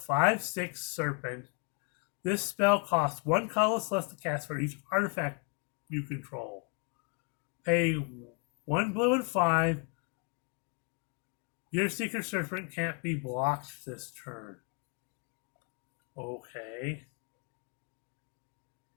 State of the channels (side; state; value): right; quieter; 35.2 dB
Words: Serpent. This spell costs 1 colorless less to cast for each artifact you control. Pay 1 blue and 5. Gear Seeker Serpent can't be blocked this turn. Okay.